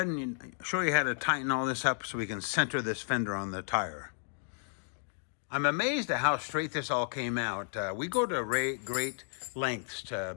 and show you how to tighten all this up so we can center this fender on the tire. I'm amazed at how straight this all came out. We go to great lengths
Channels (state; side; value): silent; right; digital silence